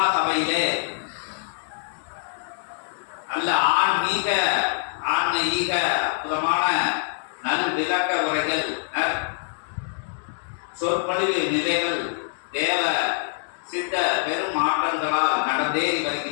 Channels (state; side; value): silent; right; digital silence